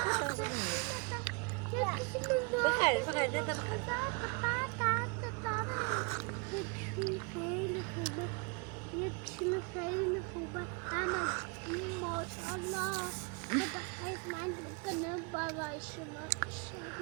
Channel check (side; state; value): left; quieter; 32.1 dB